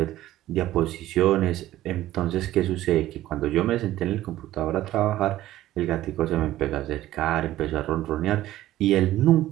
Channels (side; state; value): left; quieter; 14.6 dB